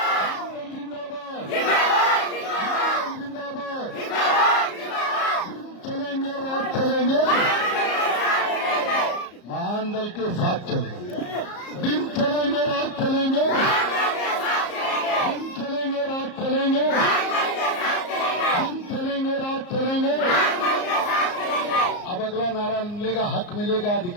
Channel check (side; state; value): right; late; 34 ms